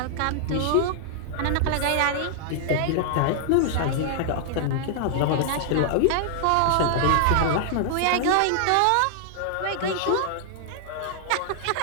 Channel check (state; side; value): different; both; correlation -0.01